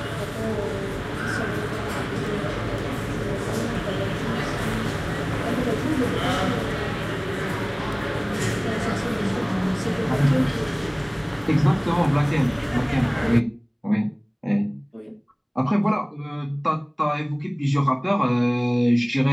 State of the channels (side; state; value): both; identical; correlation 1.00